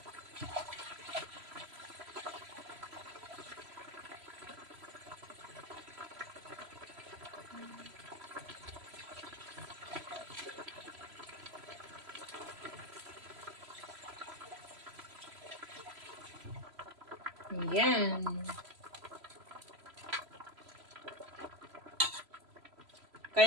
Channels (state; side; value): late; left; 3.0 ms